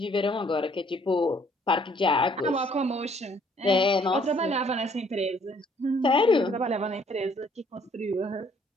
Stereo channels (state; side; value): normal; both; correlation 0.63